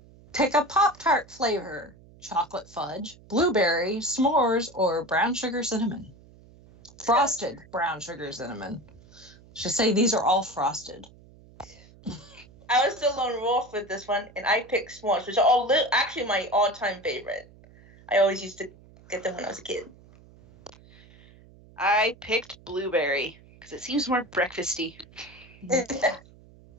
Pick a Pop-Tart flavor. Chocolate fudge, blueberry, s'mores, or brown sugar cinnamon. Frosted brown sugar cinnamon. Should say these are all frosted. I was still on Wolf with this one, and I picked s'mores, which are all actually my all-time favorite. I always used to get them when I was a kid. I picked blueberry because it seems more breakfasty.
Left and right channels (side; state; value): right; noise; hum, 24 dB below the sound